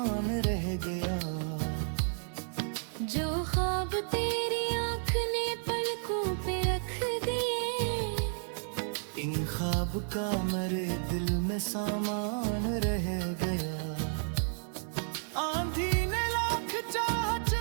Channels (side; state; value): left; silent; 56 dB below the other